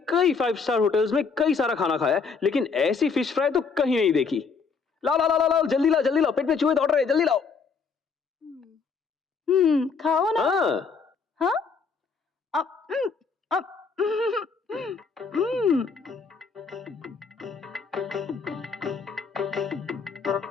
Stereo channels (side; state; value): right; quieter; 5.2 dB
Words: कई 5 स्टार होटल्स में कई सारा खाना खाया है, लेकिन ऐसी फिश फ्राई तो कहीं नहीं देखी। लाओ लाओ लाओ लाओ, जल्दी लाओ जल्दी लाओ, पेट में चूहे दौड़ रहे हैं, जल्दी लाओ। खाओ ना। हाँ,